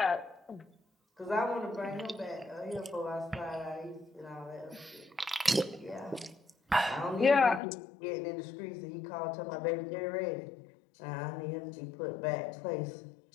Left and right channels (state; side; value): drops out; right; at 7.6 s